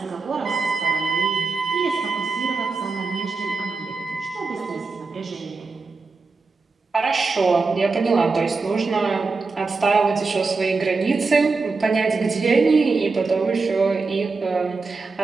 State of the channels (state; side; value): quieter; left; 4.1 dB